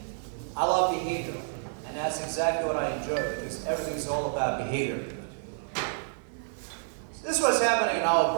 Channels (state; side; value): silent; left; digital silence